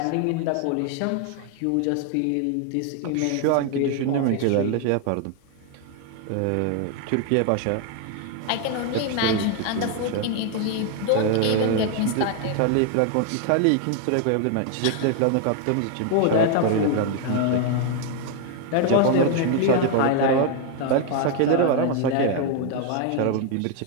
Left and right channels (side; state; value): both; different; correlation 0.00